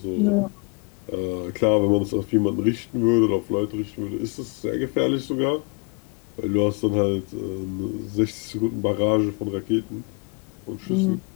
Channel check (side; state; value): right; quieter; 33.1 dB